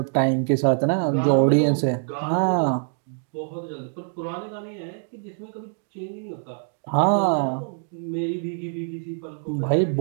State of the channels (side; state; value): left; silent; digital silence